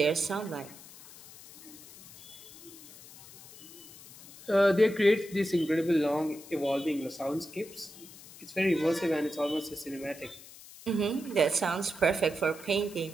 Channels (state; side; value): noise; left; hiss, 18 dB below the sound